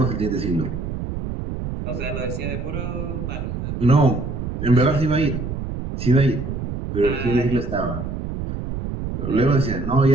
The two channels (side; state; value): right; noise; rumble, 5 dB below the sound